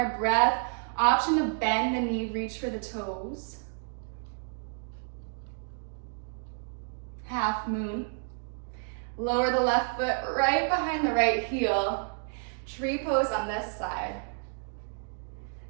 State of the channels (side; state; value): left; silent; 58 dB below the other